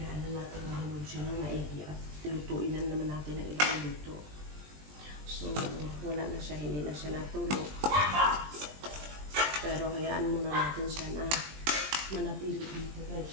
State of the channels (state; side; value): late; left; 20 ms